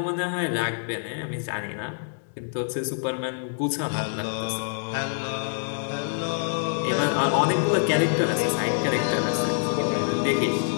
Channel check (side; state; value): right; silent; digital silence